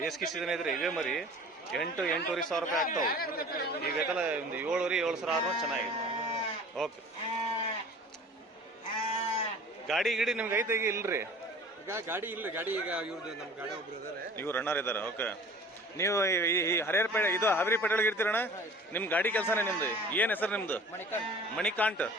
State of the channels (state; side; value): normal; both; correlation 0.45